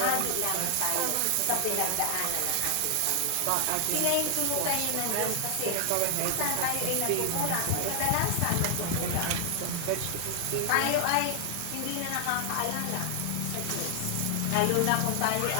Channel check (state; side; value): different; both; correlation 0.00